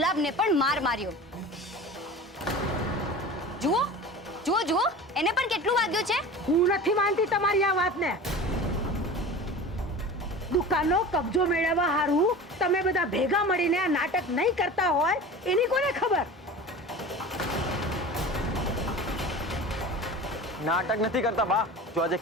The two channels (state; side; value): normal; both; correlation 0.35